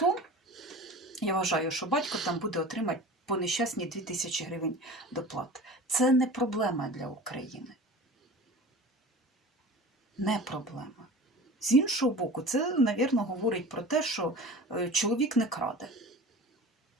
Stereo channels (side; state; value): both; normal; correlation 0.37